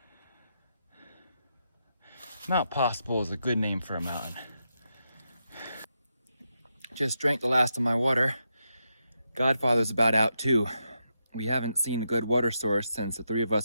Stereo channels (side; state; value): both; inverted; correlation -0.85